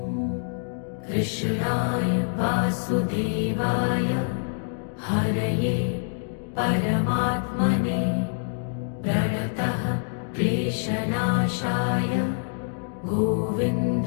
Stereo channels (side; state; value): right; silent; digital silence